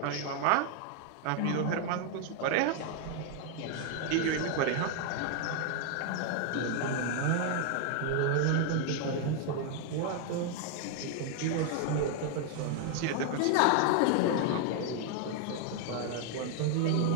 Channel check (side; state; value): both; different; correlation 0.00